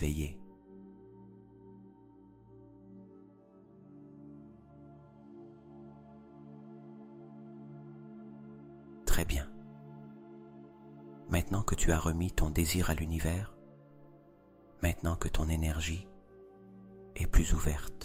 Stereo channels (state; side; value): identical; both; correlation 1.00